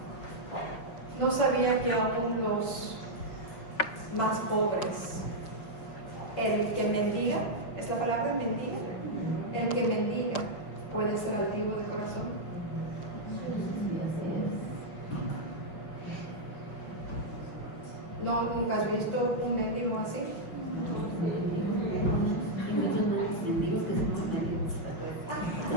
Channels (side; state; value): right; late; 6.1 ms